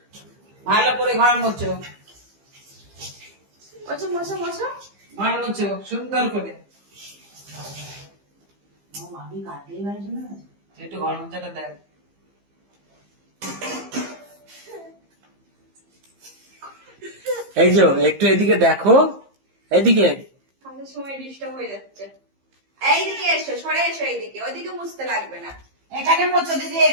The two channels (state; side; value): late; left; 15 ms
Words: ভালো করে ঘর মুছো, মোছো মোছো মোছো। ঘর মুছো সুন্দর করে। মামি কাটলেই বাড়ি চলে গেছে। একটু ঘর মোছাটা দেখ। এই যে একটু এদিকে দেখো, এদিকে। কাজের সময় ডিস্টার্ব হয়ে যাচ্ছে। এইদিকে এসো, সরে এসো এইদিকে, ওইদিকে মুছতে লাগবে না। এখানে মোছো দিদি,